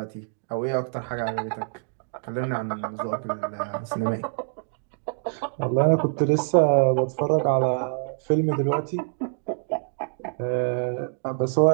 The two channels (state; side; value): silent; left; digital silence